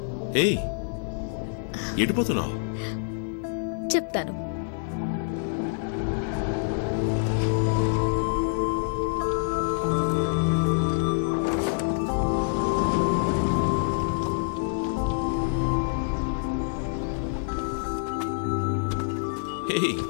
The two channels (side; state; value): right; silent; 59 dB below the other